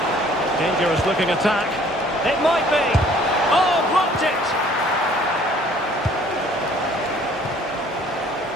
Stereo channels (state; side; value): normal; both; correlation 0.56